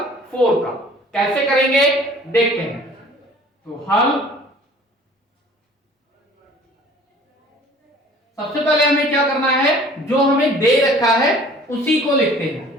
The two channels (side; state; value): both; normal; correlation 0.50